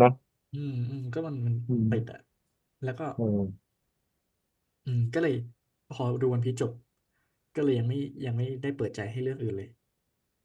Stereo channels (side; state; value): both; identical; correlation 1.00